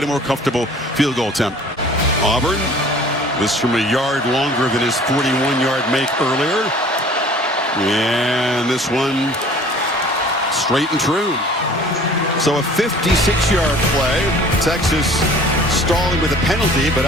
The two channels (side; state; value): both; normal; correlation 0.49